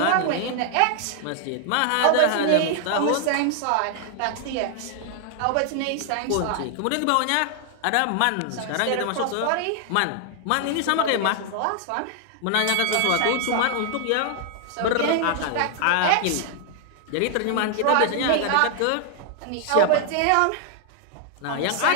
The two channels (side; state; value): both; different; correlation 0.00